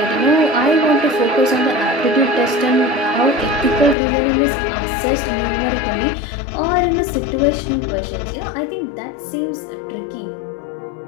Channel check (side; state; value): right; drops out; at 4.0 s